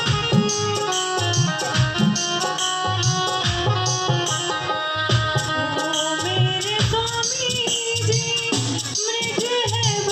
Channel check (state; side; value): identical; both; correlation 1.00